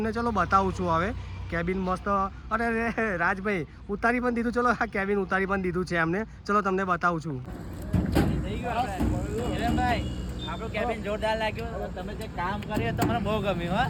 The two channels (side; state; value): both; identical; correlation 1.00